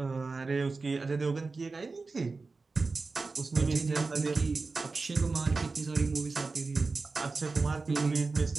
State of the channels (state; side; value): quieter; left; 4.0 dB